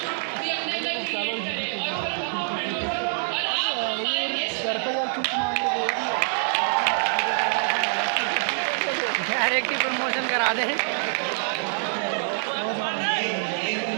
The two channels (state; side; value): silent; left; 56 dB below the other